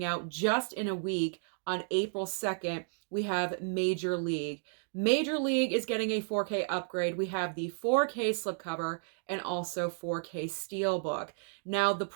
out just in a week, on April 2nd, we have Major League. Major League is getting a 4K upgrade. We have the 4K slipcover and also 4K steelbook. Now, the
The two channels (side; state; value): left; silent; digital silence